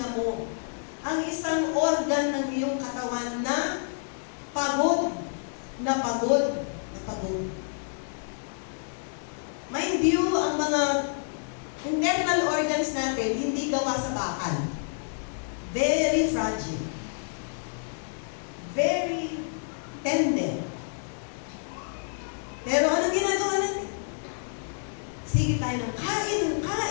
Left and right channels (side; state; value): right; silent; digital silence